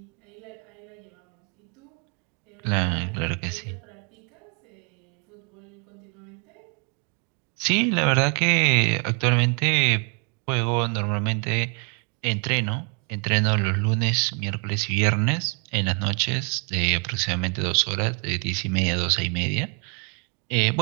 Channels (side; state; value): left; quieter; 36.9 dB